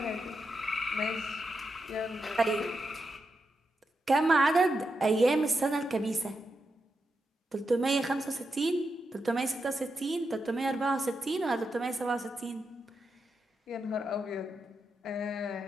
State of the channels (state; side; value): normal; both; correlation 0.86